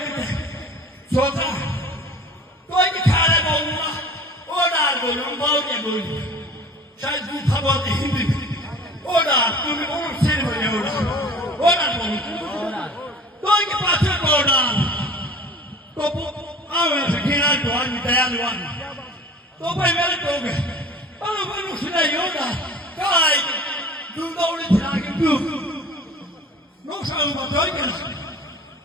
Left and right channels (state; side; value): normal; both; correlation 0.44